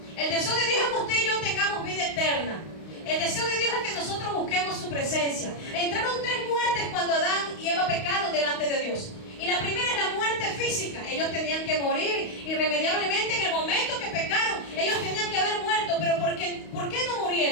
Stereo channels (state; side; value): late; right; 32 ms